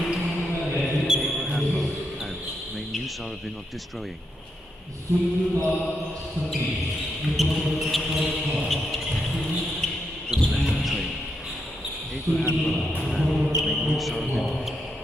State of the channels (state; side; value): normal; both; correlation 0.81